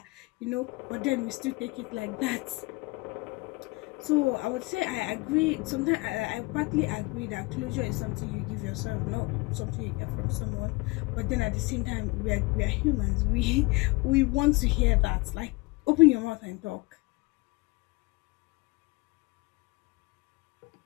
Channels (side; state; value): right; quieter; 24.6 dB